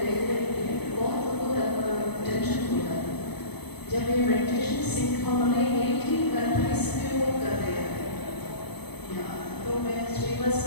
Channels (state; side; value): late; right; 0.98 ms